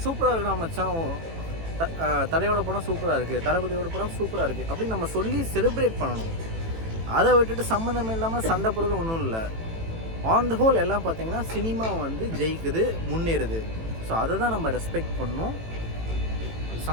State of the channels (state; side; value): late; left; 18 ms